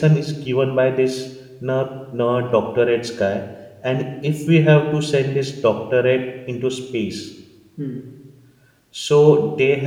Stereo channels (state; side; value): identical; both; correlation 1.00